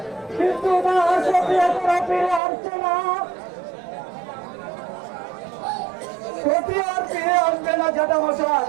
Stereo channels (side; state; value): left; drops out; at 2.4 s